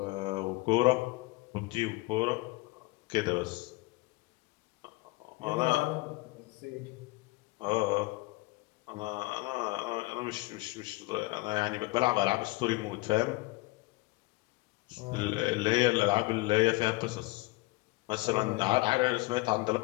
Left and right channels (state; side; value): quieter; right; 22.5 dB